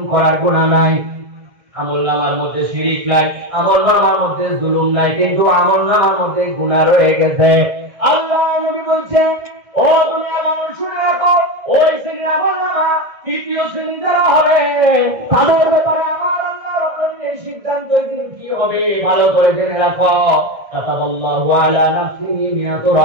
করার গুনাহ নাই। আমলনামার মধ্যে শিরক নাই, আমলনামার মধ্যে জুলুম নাই, কিন্তু আমলনামার মধ্যে গুনাহ রয়ে গেছে। আল্লাহ নবী বলছেন ও দুনিয়ার মানুষ শুনে রাখো, ওই শ্রেণীর আমলনামা তৃতীয় শ্রেণী যারা হবে তাদের ব্যাপারে আমার আল্লাহ রাব্বুল আলামিনের সিদ্ধান্ত দিন কি হবে ভালো করে জেনে রাখো। কাতাবাল্লাহু আলা নাফসিহি মিয়াতু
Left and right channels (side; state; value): left; late; 1.6 ms